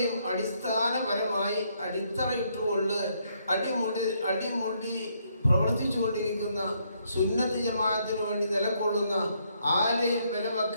അടിസ്ഥാനപരമായി അടിത്തറയിട്ടുകൊണ്ട് അടിമുടി പ്രവർത്തിച്ചുകൊണ്ടിരിക്കുന്ന സുന്നത്ത് ജമാഅത്തിന് വേണ്ടി നിലകൊള്ളുന്ന, ആരെയും വില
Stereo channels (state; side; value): inverted; both; correlation -0.73